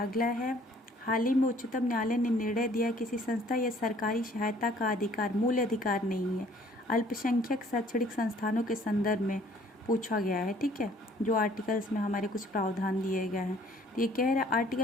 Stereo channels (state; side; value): normal; both; correlation 0.58